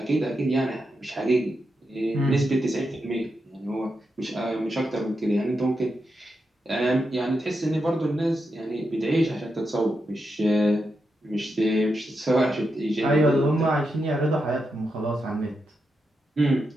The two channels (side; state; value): both; normal; correlation 0.86